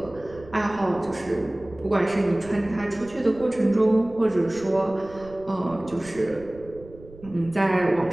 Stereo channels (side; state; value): right; noise; rumble, 20 dB below the sound